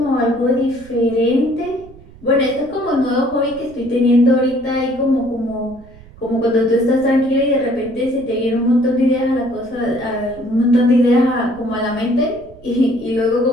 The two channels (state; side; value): noise; right; rumble, 22 dB below the sound